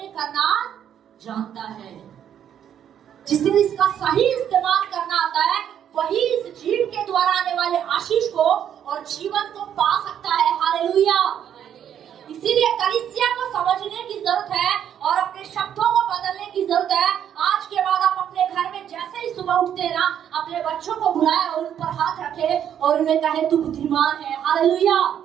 करना जानता है। जिसे इसका सही इस्तेमाल करना आता है, वही इस जीव के द्वारा आने वाले आशीष को और जीवन को पा सकता है। हालेलुया। इसीलिए कलीसिया को समझने की जरूरत है और अपने शब्दों को बदलने की जरूरत है। आज के बाद आप अपने घर में जैसे ही सुबह उठते हैं ना, अपने बच्चों को बुलाए और उन पर हाथ रखे और उन्हें कहे तू बुद्धिमान है। हालेलुया।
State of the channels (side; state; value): left; quieter; 9.5 dB